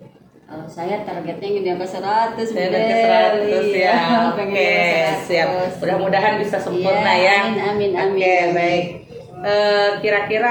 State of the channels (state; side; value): identical; both; correlation 1.00